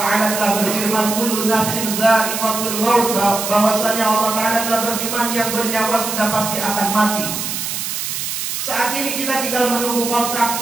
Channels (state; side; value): noise; right; hiss, 4 dB below the sound